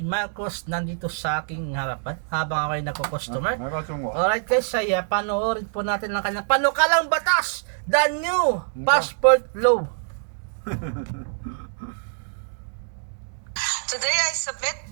Marcos nandito sa aking harapan habang ako ay nagko-customer. Alright guys, ay panoorin po natin ang kanyang panukalang batas, the new passport law. Today I submit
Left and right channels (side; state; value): left; silent; digital silence